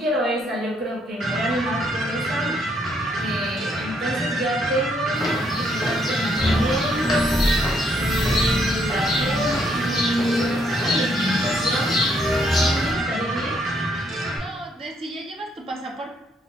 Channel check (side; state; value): both; normal; correlation 0.71